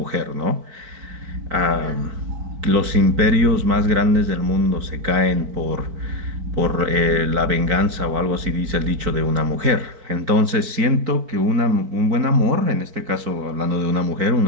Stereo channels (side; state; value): left; late; 4.5 ms